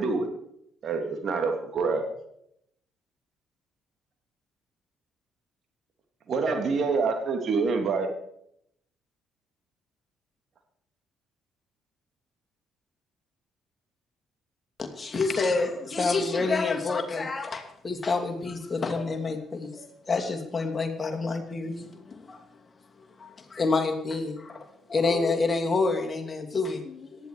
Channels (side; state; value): both; normal; correlation 0.76